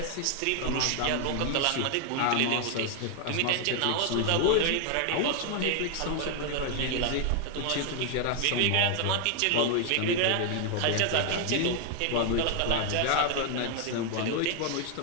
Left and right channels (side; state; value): both; different; correlation 0.00